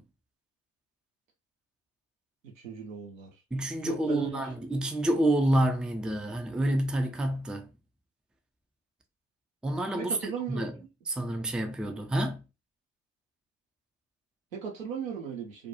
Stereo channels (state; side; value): normal; both; correlation 0.80